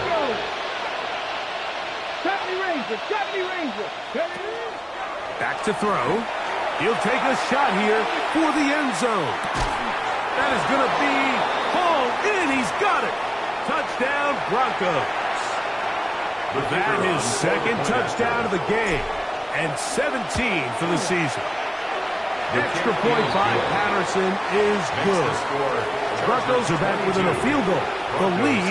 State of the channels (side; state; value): both; identical; correlation 1.00